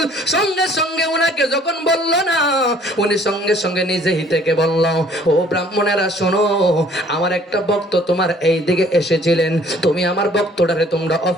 সঙ্গে সঙ্গে ওনাকে যখন বললো না, উনি সঙ্গে সঙ্গে নিজেই থেকে বলল, ও ব্রাহ্মণেরা শোনো, আমার একটা ভক্ত তোমার এই দিকে এসেছিলেন, তুমি আমার ভক্তটারে তোমরা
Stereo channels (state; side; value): normal; both; correlation 0.57